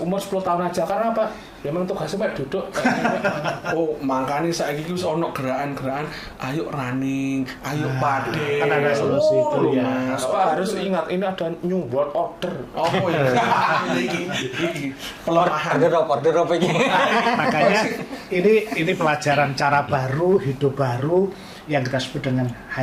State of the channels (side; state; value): both; identical; correlation 1.00